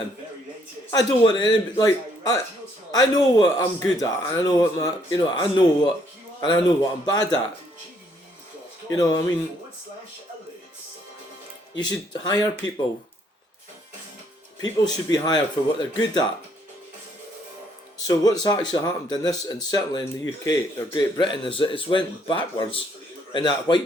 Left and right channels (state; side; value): normal; both; correlation 0.68